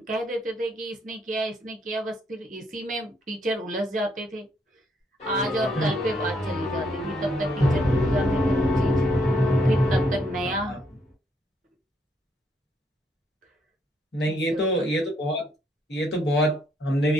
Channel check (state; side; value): normal; both; correlation 0.73